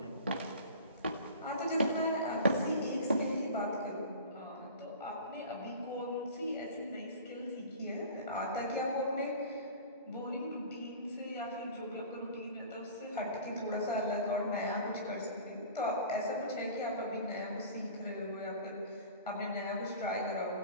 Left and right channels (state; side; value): inverted; both; correlation -0.40